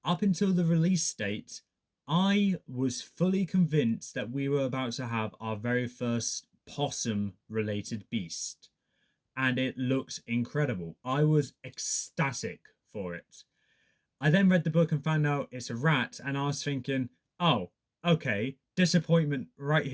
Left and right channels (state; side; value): identical; both; correlation 1.00